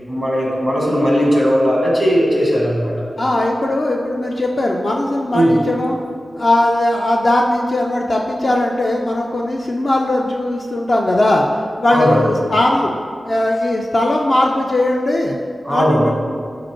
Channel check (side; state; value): both; normal; correlation 0.94